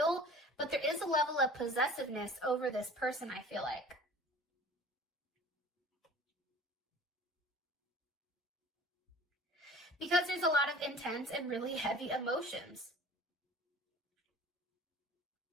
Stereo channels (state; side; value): normal; both; correlation 0.44